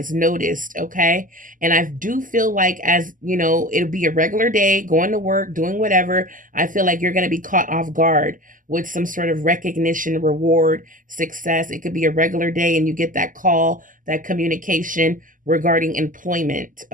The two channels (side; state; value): left; late; 0.38 ms